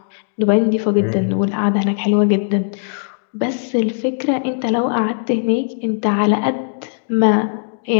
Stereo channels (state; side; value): silent; right; digital silence